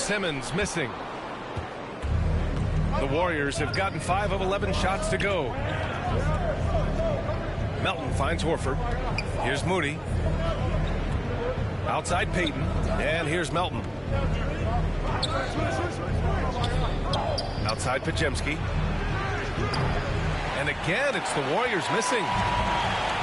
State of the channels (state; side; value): identical; both; correlation 1.00